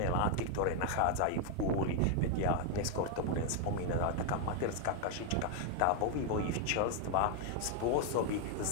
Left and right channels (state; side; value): different; both; correlation 0.00